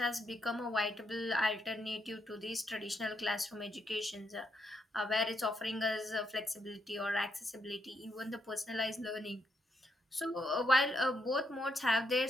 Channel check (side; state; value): both; normal; correlation 0.78